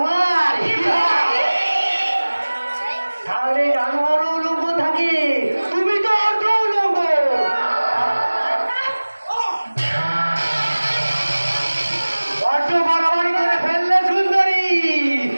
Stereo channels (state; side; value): inverted; both; correlation -1.00